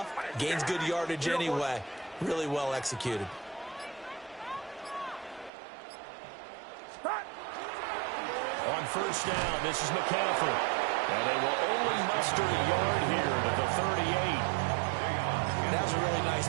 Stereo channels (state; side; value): drops out; left; at 5.5 s